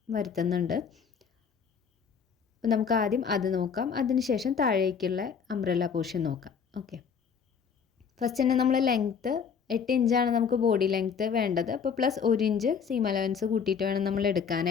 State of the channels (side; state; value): right; quieter; 6.6 dB